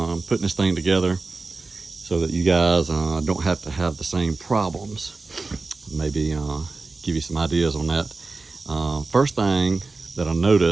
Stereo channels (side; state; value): left; quieter; 3.8 dB